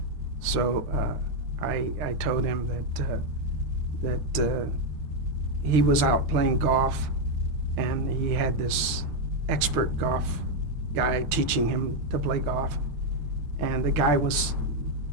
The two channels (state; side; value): late; left; 6.6 ms